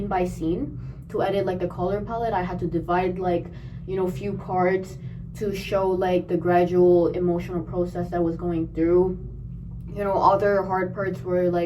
by scene to edit like the color palette. I had to divide like, you know, few parts to show like the gradual emotional process that was going through. You know, other hard parts were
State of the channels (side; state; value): both; identical; correlation 1.00